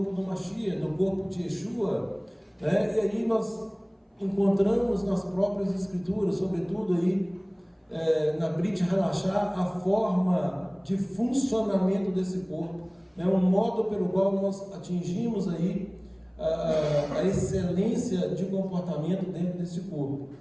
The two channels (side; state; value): both; identical; correlation 1.00